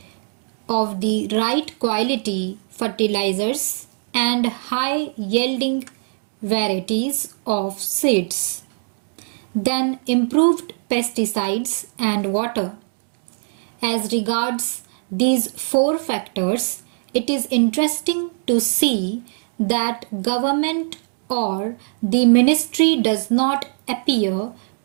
of the right quality fertilizers and high yielding varieties of seeds. Then, improved pesticides and water. As regards these 4 factors, it is interesting to see that government or the ministry does not appear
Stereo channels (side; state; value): left; silent; 55 dB below the other